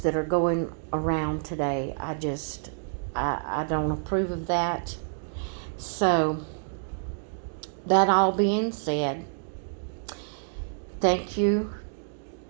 that are going around today. I don't approve of that. So, that all being said, thank you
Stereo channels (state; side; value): silent; left; digital silence